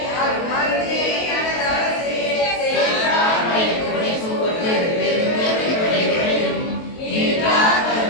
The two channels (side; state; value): right; late; 23 ms